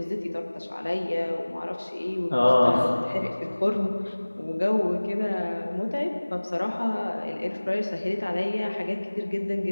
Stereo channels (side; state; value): both; inverted; correlation -1.00